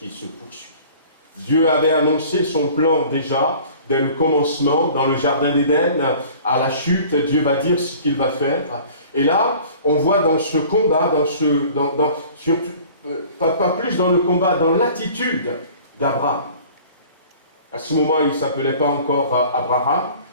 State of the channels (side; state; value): both; inverted; correlation -0.47